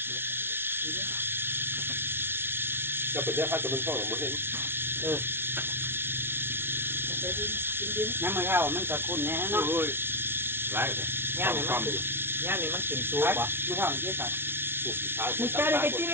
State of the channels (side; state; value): left; late; 0.11 ms